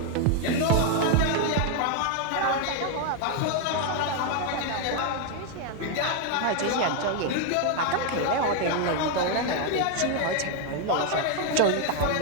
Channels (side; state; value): both; different; correlation 0.01